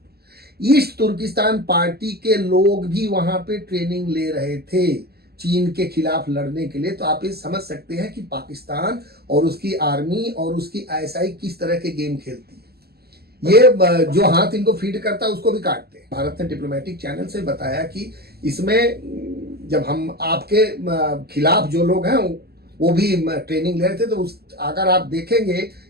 East Turkistan party के लोग भी वहाँ पे ट्रेनिंग ले रहे थे चीन के खिलाफ लड़ने के लिए। तो आप ये समझ सकते हैं कि पाकिस्तान और उसकी आर्मी और उसकी आईएसआई किस तरह के गेम खेलती है। ये जो हाथ इनको फीड करता है उसको भी काटते हैं। भारत ने डिप्लोमेटिक चैनल से बताया कि इसमें जब हम आपके खिलाफ जो लोग हैं वो भी ट्रेनिंग ले रहे थे, तो अगर आप देखेंगे,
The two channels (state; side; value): late; left; 0.46 ms